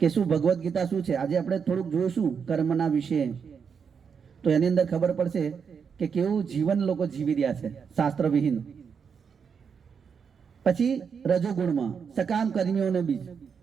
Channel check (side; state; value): left; quieter; 6.5 dB